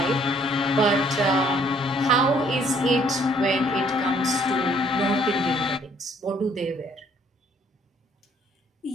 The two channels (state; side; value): normal; both; correlation 0.63